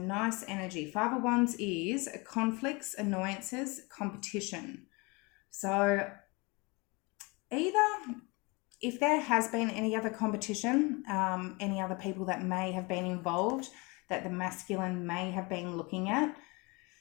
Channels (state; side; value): quieter; right; 27.4 dB